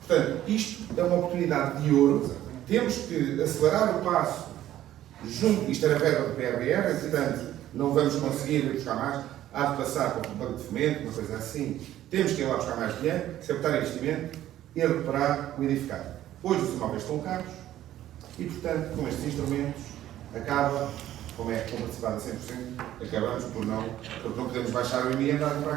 Portanto, isto é uma oportunidade de ouro. Temos que acelerar o passo junto. Isto era verba do PRR, portanto, não vamos conseguir ir buscar mais. Há de passar para o banco de fomento, uma coisa assim. Temos que ir lá buscar mais dinheiro, captar investimento e recuperar o edificado. Hoje os imóveis estão caros e, portanto, com estes instrumentos, acaba, como é comparticipado a 100%, acabamos porque não podemos baixar o IMI e andar a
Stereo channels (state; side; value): quieter; left; 12.9 dB